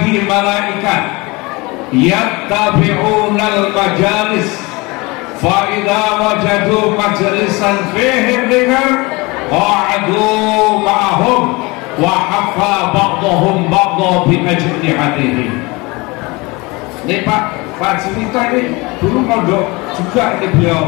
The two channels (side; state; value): right; quieter; 24.7 dB